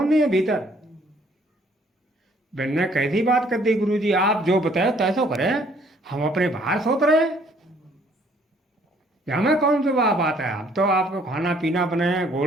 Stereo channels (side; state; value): both; normal; correlation 0.62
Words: है भीतर। मैंने कैसी बात कर दी गुरुजी, आप जो बताए तैसो करें, हम अपने बाहर सोत रहे। हमें कौन सी बात है, हम तो आपको खाना पीना बनाए,